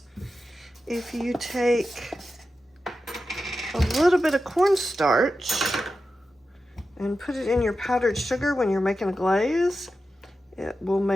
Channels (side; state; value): both; normal; correlation 0.91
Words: If you take a little bit of cornstarch and put it in your powdered sugar when you're making a glaze, it will